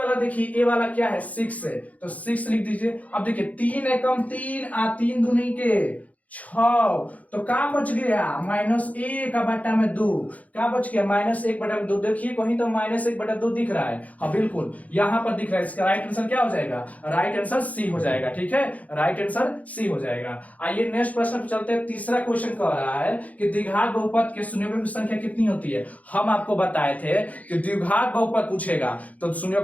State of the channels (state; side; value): late; right; 0.071 ms